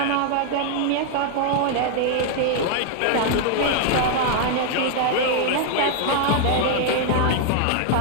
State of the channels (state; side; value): different; both; correlation 0.00